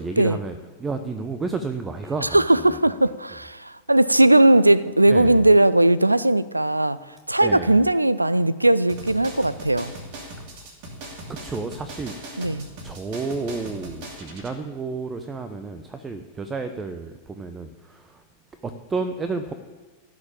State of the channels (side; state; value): both; inverted; correlation -0.86